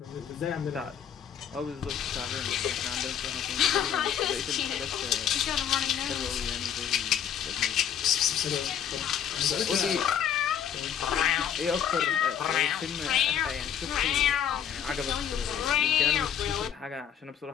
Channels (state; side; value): quieter; right; 8.8 dB